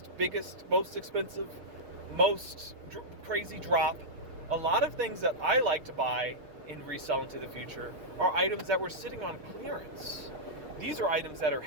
biggest, most expensive, most crazy drop. A lot of things that I like to buy and resell into the future are items that were sitting on clearance. These are items that are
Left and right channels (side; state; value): left; late; 6.5 ms